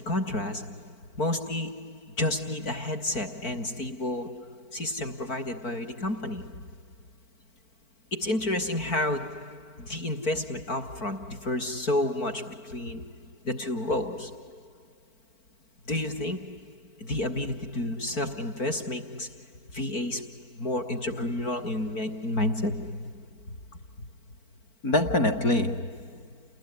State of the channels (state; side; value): late; right; 4.5 ms